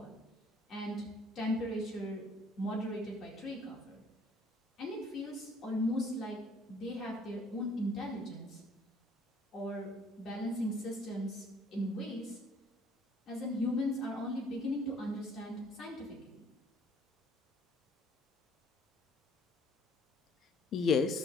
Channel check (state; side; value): normal; both; correlation 0.59